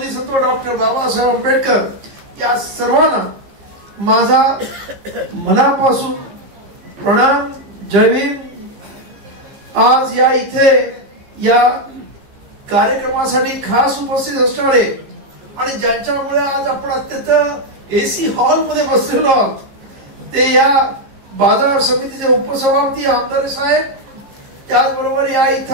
डॉक्टर बाबासाहेब आंबेडकर। या सर्वांना माझा मनापासून प्रणाम, जय भीम। आज या इथे या कार्यक्रमासाठी खास उपस्थित असणारे आणि ज्यांच्यामुळे आज आपण अत्यंत एसी हॉल मध्ये बसलेलो आहोत ते या बाजार समितीचे उपसभापती आमदार साहेब, त्याचबरोबर या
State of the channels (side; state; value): left; late; 15 ms